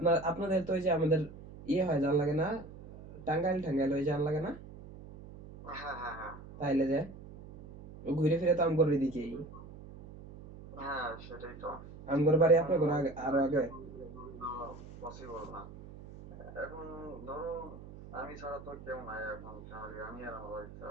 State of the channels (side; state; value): right; noise; hum, 15 dB below the sound